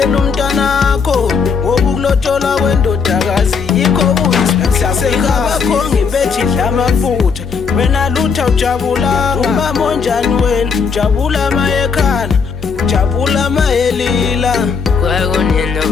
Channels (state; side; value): quieter; right; 5.7 dB